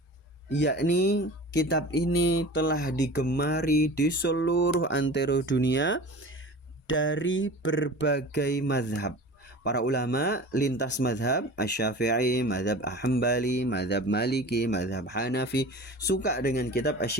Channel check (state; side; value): normal; both; correlation 0.37